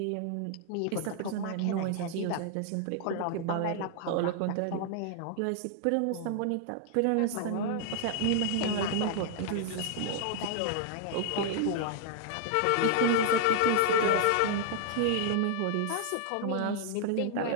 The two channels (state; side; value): different; both; correlation 0.00